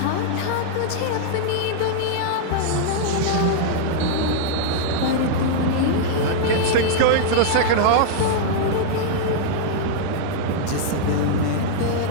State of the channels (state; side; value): different; both; correlation -0.01